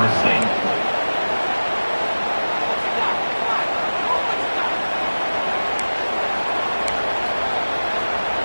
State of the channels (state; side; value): inverted; both; correlation -1.00